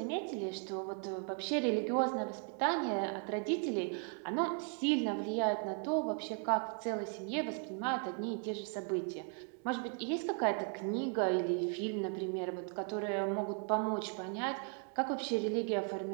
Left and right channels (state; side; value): quieter; left; 39.6 dB